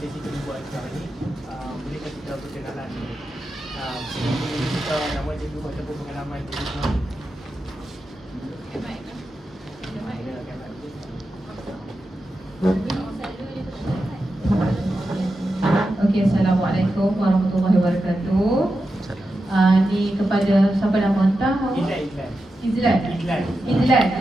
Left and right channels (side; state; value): both; normal; correlation 0.90